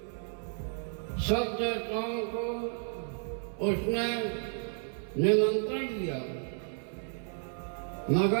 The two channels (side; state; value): left; silent; digital silence